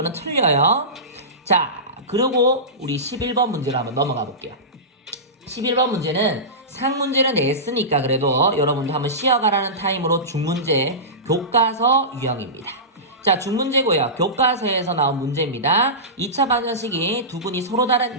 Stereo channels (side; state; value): both; normal; correlation -0.19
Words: 틀려요. 자, 그리고 우리 11번 문제로 한번 넘어가 볼게요. 11번 문제는 상문제는 냈으니까 그래도 여러분도 한번 쉬어가라는 타임으로 중문제 교과서 유형입니다. 자, 중문제고요. 교과서에서 나온 문제입니다. 2차 방정식이 두 분이 서로